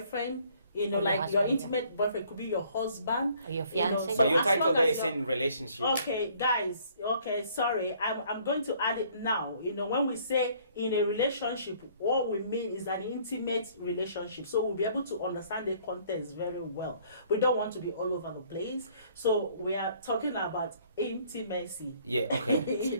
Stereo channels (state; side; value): inverted; both; correlation -0.60